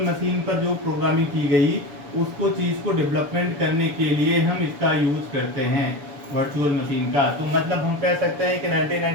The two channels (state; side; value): late; left; 6.9 ms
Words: मशीन पर जो प्रोग्रामिंग की गई उसको चीज़ को डेवलपमेंट करने के लिए हम इसका यूज़ करते हैं, वर्चुअल मशीन का। तो मतलब हम कह सकते हैं कि